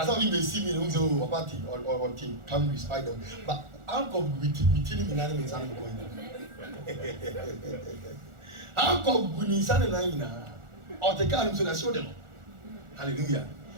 how we may see me in a party or team, come respite them. But how come we tell him in animals and going? How come we need something or the car so that show them? Hallelujah.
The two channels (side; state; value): left; late; 1.4 ms